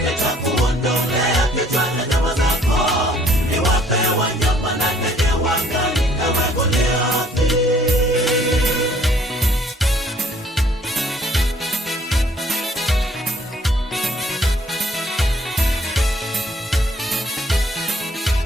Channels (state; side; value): normal; both; correlation 0.59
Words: Nitakuondolea kichwa na nyama zako, niwape wanyama na ndege wa angani, ewe Goliathi.